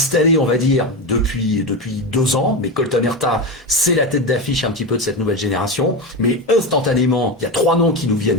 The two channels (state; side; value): normal; both; correlation 0.18